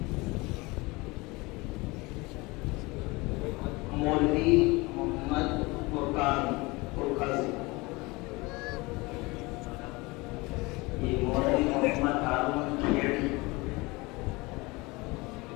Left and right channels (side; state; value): right; quieter; 23.9 dB